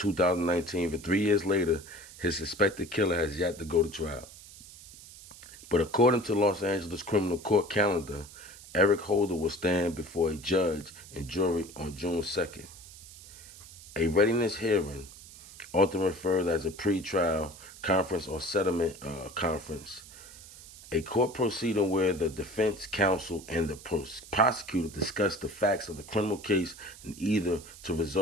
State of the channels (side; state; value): right; noise; hiss, 18 dB below the sound